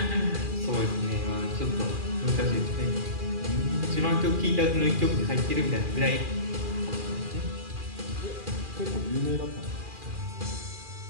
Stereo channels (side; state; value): left; late; 2.4 ms